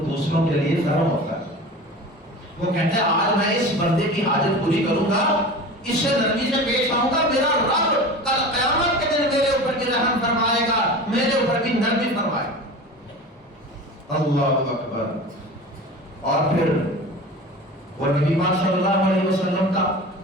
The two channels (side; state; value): both; normal; correlation 0.34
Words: دوسروں کے لیے نرم ہوتا ہے. وہ کہتے ہیں آج میں اس بندے کی حاجت پوری کروں گا، اس سے نرمی سے پیش آؤں گا، میرا رب کل قیامت کے دن میرے اوپر بھی رحم فرمائے گا، میرے اوپر بھی نرمی فرمائے گا. اللہ اکبر. اور پھر وہ نبی پاک صلی اللہ علیہ وسلم کا